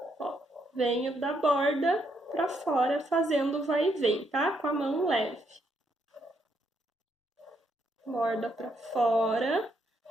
Ó, venho da borda pra fora fazendo vai e vem, tá? Com a mão leve. Borda pra fora.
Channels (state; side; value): normal; both; correlation 0.75